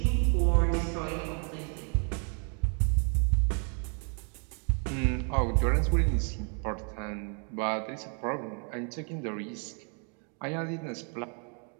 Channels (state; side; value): quieter; left; 40.0 dB